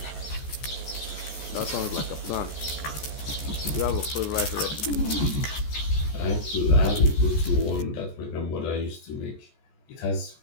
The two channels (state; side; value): late; right; 14 ms